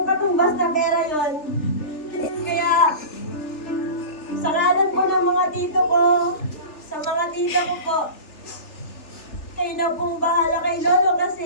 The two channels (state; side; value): late; right; 3.4 ms